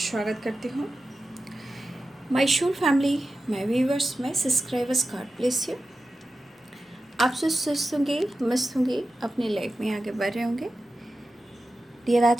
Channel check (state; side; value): normal; both; correlation 0.93